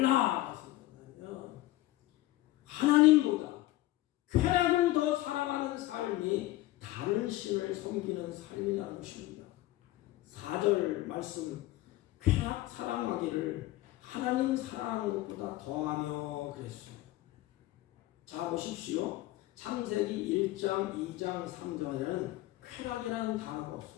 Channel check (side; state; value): right; quieter; 16.9 dB